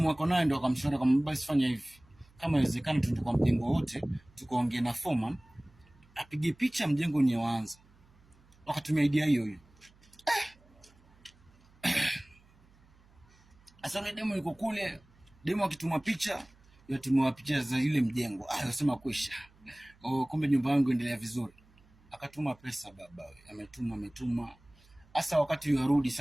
wako naye ndo akamshauri kama basi fanya hivi, kama inawezekana tuende kwa mjengo wote tukaongea na foreman apige picha mjengo ni waanza. Wakatumia idea hiyo. Sasa yule demu yuko kule, demu akituma picha, yatumwa picha za ile mjengo. Anasema kwisha. Kumbe nyumba yangu endelea vizuri. Akatuma pesa baba, ametuma. Sasa wakati yarudi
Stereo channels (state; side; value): noise; right; hum, 29 dB below the sound